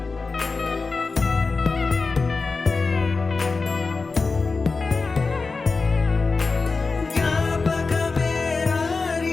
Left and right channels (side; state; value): right; quieter; 4.1 dB